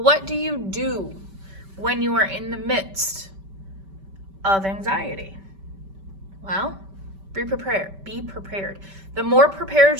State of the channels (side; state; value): left; late; 5.2 ms